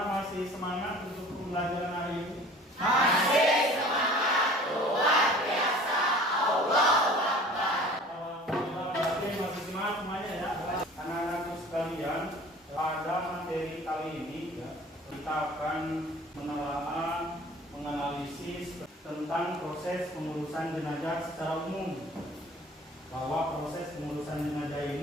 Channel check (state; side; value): normal; both; correlation 0.46